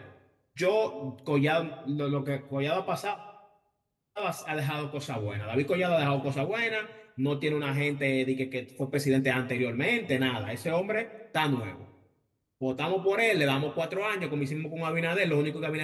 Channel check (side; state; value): both; identical; correlation 1.00